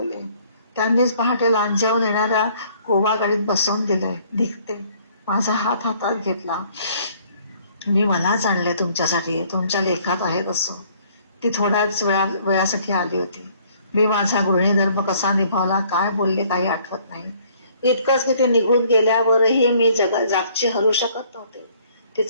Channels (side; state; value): both; inverted; correlation -0.60